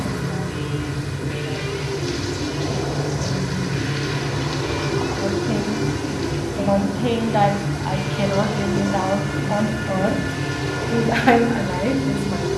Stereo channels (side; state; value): both; identical; correlation 1.00